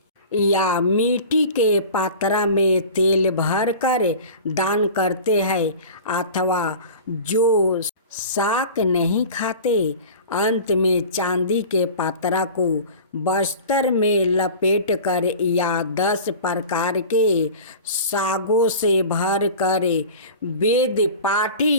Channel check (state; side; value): inverted; both; correlation -0.38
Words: या मिट्टी के पात्रा में तेल भरकर दान करते हैं, अथवा जो शाक नहीं खाते, अंत में चांदी के पात्रा को बस्तर में लपेट कर या 10 प्रकार के सागों से भर कर वेद